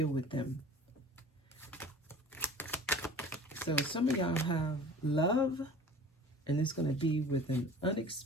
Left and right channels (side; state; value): both; normal; correlation 0.43